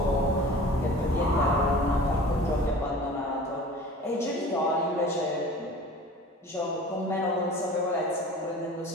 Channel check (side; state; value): both; normal; correlation 0.42